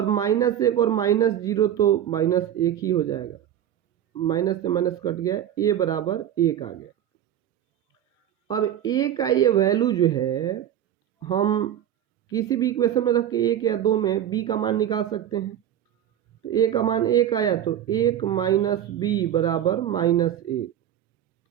-1 और -0 तो -1 ही हो जाएगा, माइनस से माइनस कट गया, a बराबर 1 आ गया। अब a का ये वैल्यू जो है हम किसी भी इक्वेशन में रख के 1 या 2 में b का मान निकाल सकते हैं। तो a का मान 1 आया तो 1 माइनस b बराबर -1।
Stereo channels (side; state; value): left; quieter; 10.7 dB